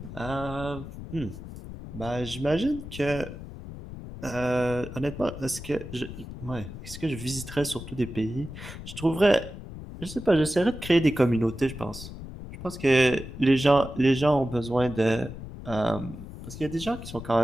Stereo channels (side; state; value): left; noise; rumble, 11 dB below the sound